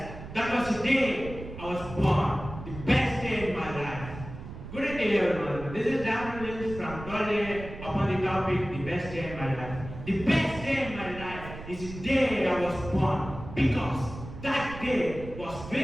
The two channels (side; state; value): right; noise; rumble, 12 dB below the sound